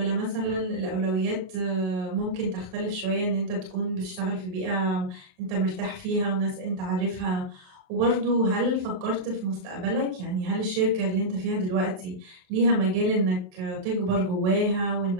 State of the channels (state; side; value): late; left; 28 ms